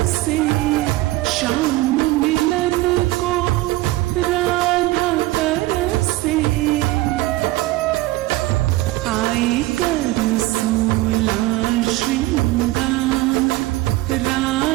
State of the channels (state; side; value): quieter; left; 18.4 dB